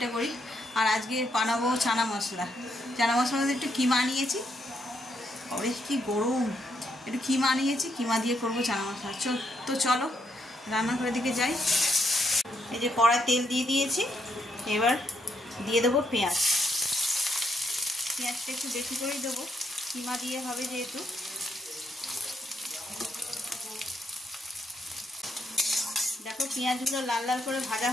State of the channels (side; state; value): both; normal; correlation 0.77